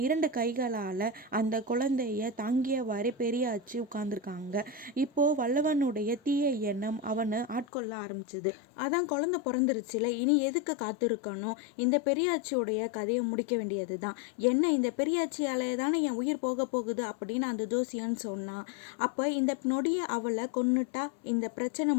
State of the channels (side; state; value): right; drops out; at 7.7 s